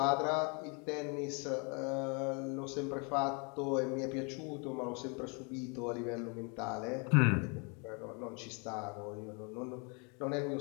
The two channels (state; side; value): quieter; right; 34.4 dB